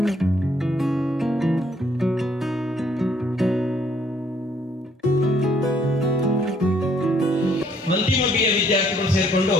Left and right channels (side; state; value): both; normal; correlation 0.65